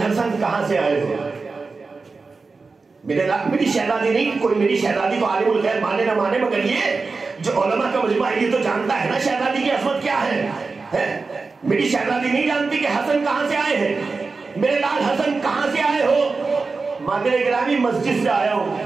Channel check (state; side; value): quieter; left; 4.2 dB